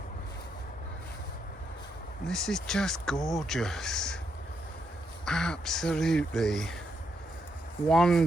This is just gorgeous. Absolutely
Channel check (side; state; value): both; normal; correlation 0.79